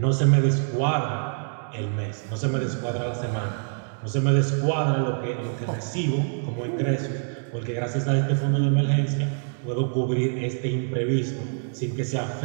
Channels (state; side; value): silent; left; 61 dB below the other